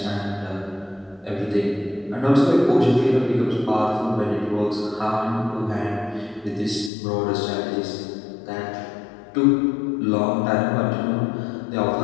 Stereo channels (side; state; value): right; drops out; at 6.9 s